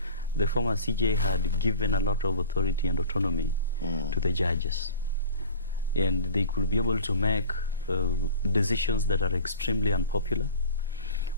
the former CJ had given a lot of authority and autonomy to the judges, and they could be able to make decisions that are extremely unpopular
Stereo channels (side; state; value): both; inverted; correlation -0.42